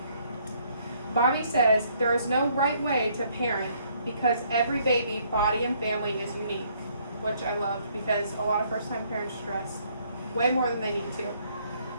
Bobby says there is no right way to parent because every baby, body, and family is unique, which I loved because a lot of first-time parents stress way more than they need to.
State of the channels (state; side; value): inverted; both; correlation -0.66